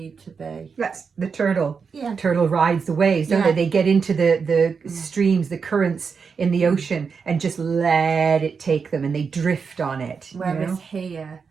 to be. That's the turtle. Yeah. Turtle rides the waves, don't they? They get into the streams, the currents in the ocean, and just let it take them, and they drift on it. Whereas here,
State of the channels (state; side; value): quieter; left; 5.6 dB